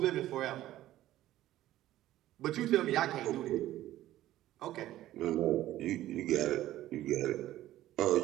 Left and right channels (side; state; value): left; quieter; 14.4 dB